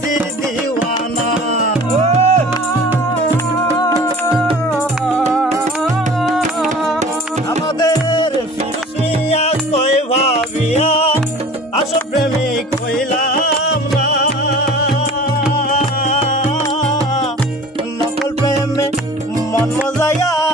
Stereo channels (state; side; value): normal; both; correlation 0.43